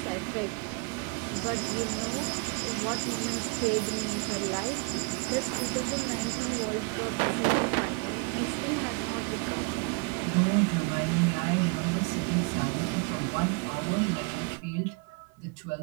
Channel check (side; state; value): left; quieter; 30.8 dB